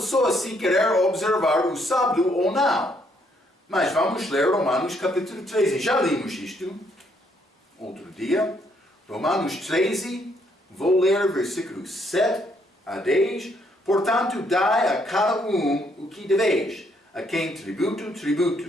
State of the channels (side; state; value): both; normal; correlation 0.71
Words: se querer observar o sábado ou não. Mas vamos ler Romanos capítulo 13. Já limos isto. outro dia. Romanos 13, vou ler versículos 7 a 10. Portanto, dai a cada o que deveis. A quem tributo,